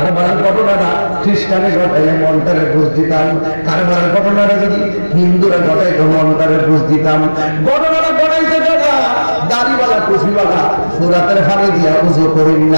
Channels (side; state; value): both; inverted; correlation -1.00